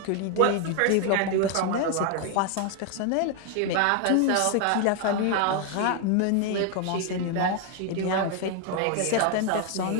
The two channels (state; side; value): different; both; correlation 0.01